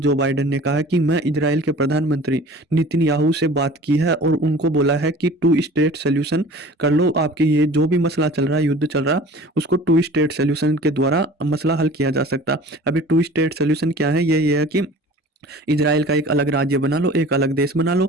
बाइडेन ने कहा है कि मैं इजराइल के प्रधानमंत्री नेतन्याहू से बात की है और उनको बोला है कि टू स्टेट सोल्यूशन कर लो। आपके ये जो भी मसला चल रहा है, युद्ध चल रहा है, उसको टू स्टेट सोल्यूशन के द्वारा मसला हल किया जा सकता। अभी टू स्टेट सोल्यूशन क्या है? ये है कि इजराइल का एक अलग राज्य बना लो, एक अलग देश बना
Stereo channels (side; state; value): both; normal; correlation 0.44